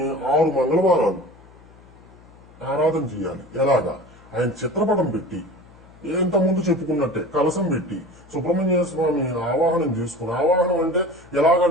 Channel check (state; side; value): noise; left; hum, 24 dB below the sound